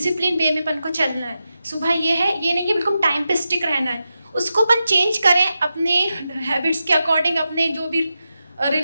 वे में अपन को चलना है. सुबह ये है, ये नहीं कि बिल्कुल टाइम पे स्टिक रहना है. उसको अपन चेंज करें अपने हैबिट्स के अकॉर्डिंग, अपने जो भी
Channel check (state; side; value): inverted; both; correlation -0.90